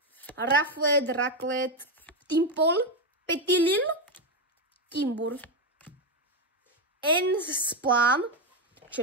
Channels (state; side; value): normal; both; correlation 0.07